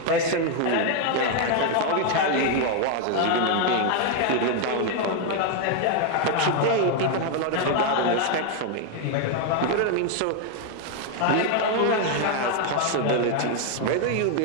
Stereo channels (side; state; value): both; different; correlation 0.01